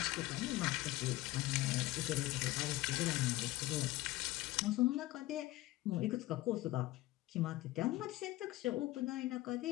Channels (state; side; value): quieter; right; 17.7 dB